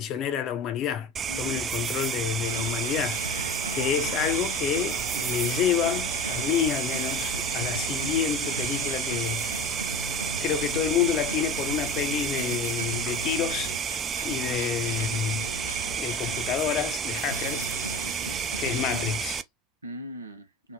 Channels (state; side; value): normal; both; correlation 0.34